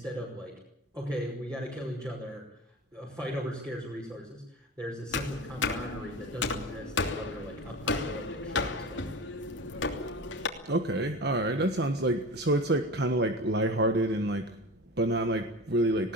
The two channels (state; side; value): normal; both; correlation 0.31